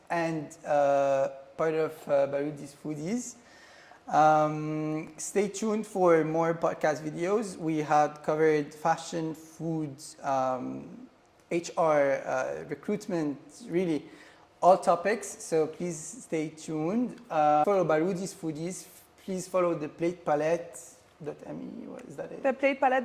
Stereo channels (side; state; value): both; identical; correlation 1.00